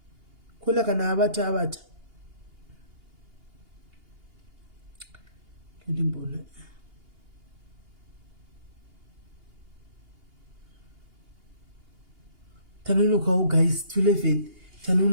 kola kana abata ndimbona tanonoka guys 11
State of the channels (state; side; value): late; left; 2.8 ms